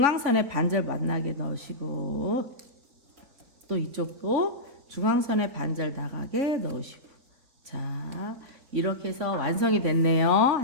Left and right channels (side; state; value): left; late; 4.1 ms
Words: 반절 만나게 넣으시고 또 이쪽도 중앙선에 반절 나가게 넣으시고 자 이렇게 해서 완성이 됐네요.